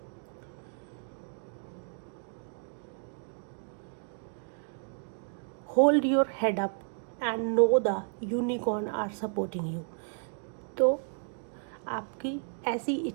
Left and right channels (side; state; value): left; silent; 56 dB below the other